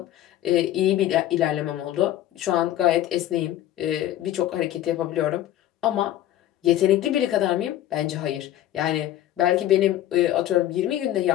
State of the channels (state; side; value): quieter; right; 13.1 dB